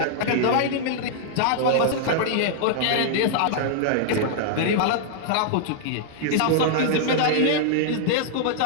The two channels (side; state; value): both; different; correlation -0.01